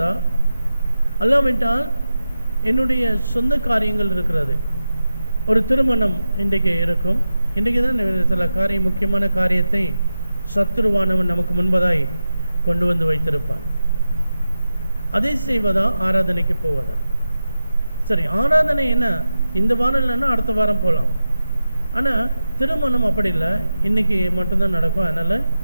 அல்லாவிட்டால் என்னுடைய சொந்த காரியங்கள் இருக்கிறது. ஒரு திருமணம் இன்றைக்கு இருக்கும். இன்றைக்கு தான் சில முக்கியமான காரியத்தை சத்துருவானவன் நமக்கு முன்பதாய் கொண்டு வந்து வைத்திருப்பான். அதை செய்வதா, ஆராதனைக்கு போவதா? சரி, ஆராதனை என்ன, இந்த வாரம் இல்லைன்னா அடுத்த வாரம் போகலாம். ஆனால் திருமணம் அப்படி இல்லை, இன்றைக்கி மட்டும்தான் நடக்கும். அதனால்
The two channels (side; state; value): both; inverted; correlation -0.92